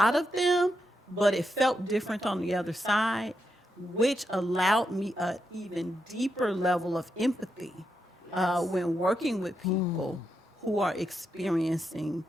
of them, but it felt different on the other side, which allowed me an even deeper level of empathy when working with people who are experiencing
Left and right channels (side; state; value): both; normal; correlation 0.84